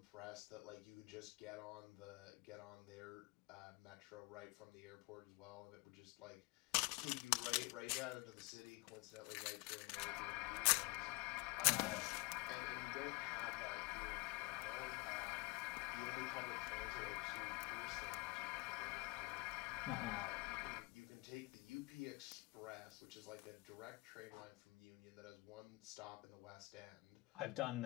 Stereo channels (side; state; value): right; quieter; 24.2 dB